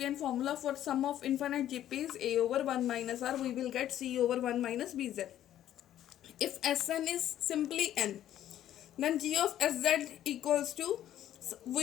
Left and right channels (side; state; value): right; quieter; 11.8 dB